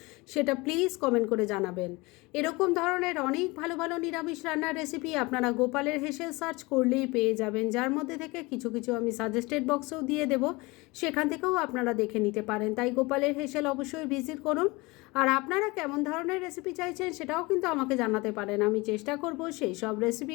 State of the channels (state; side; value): quieter; right; 24.0 dB